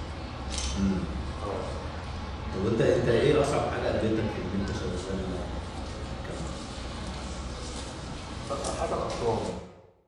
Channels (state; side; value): identical; both; correlation 1.00